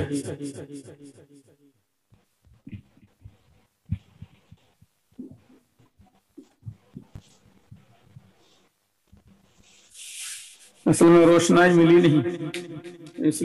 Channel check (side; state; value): both; identical; correlation 1.00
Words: اصل میں روشنائی ملی نہیں، اس